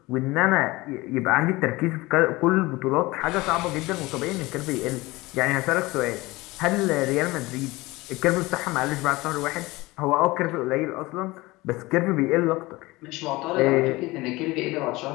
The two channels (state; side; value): quieter; right; 21.2 dB